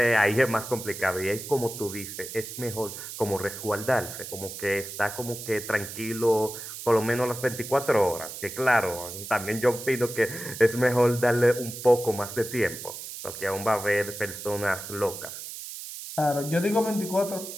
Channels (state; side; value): noise; right; hiss, 10 dB below the sound